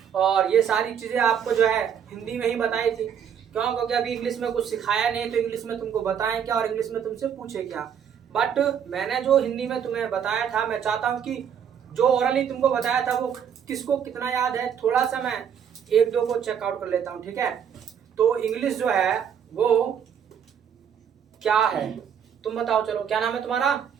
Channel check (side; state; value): left; quieter; 8.2 dB